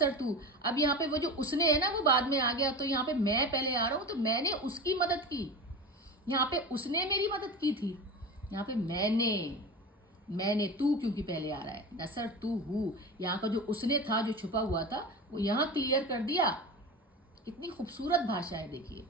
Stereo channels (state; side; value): normal; both; correlation 0.29